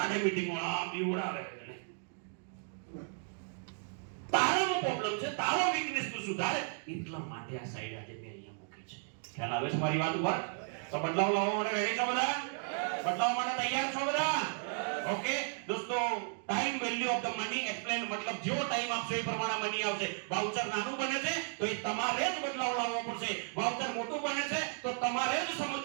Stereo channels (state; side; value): silent; left; 55 dB below the other